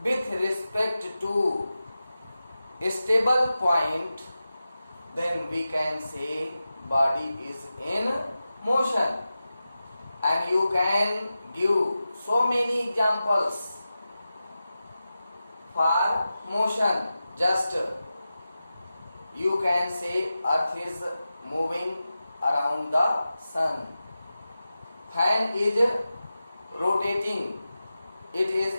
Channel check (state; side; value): inverted; both; correlation -0.93